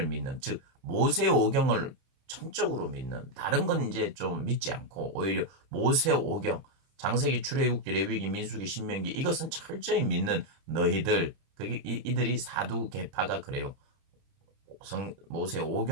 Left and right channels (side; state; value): left; late; 30 ms